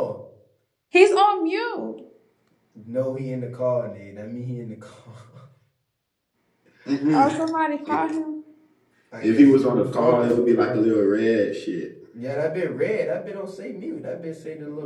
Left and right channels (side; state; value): both; identical; correlation 1.00